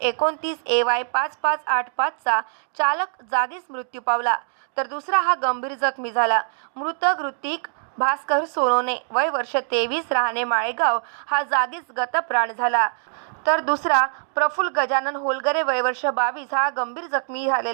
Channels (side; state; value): left; silent; digital silence